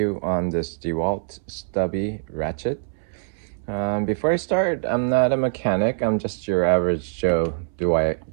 on this Dewalt Stubby Ratchet. Before I start, I'm not a mechanic. I'm just your average Joe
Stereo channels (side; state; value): left; silent; 63 dB below the other